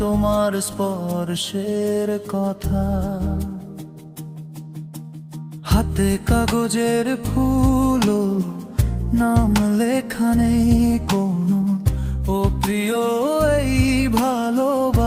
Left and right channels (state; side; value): identical; both; correlation 1.00